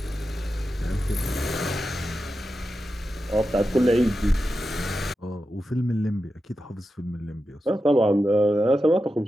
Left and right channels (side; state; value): both; normal; correlation 0.90